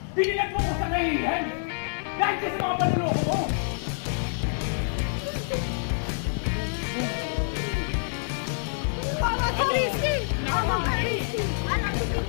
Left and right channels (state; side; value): silent; right; digital silence